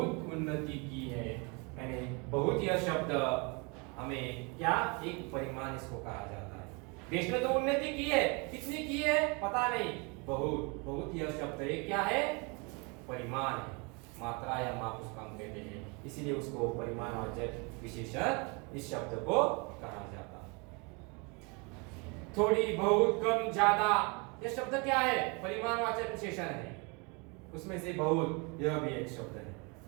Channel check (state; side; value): quieter; left; 30.8 dB